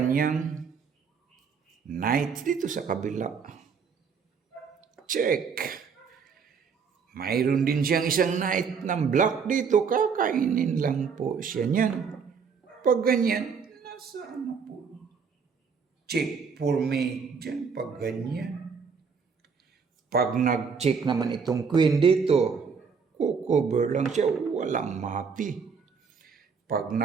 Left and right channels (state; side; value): quieter; left; 5.8 dB